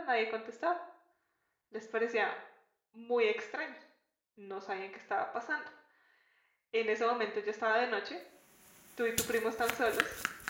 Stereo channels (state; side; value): identical; both; correlation 1.00